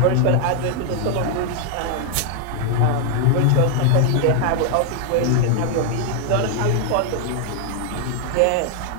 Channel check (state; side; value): different; both; correlation 0.00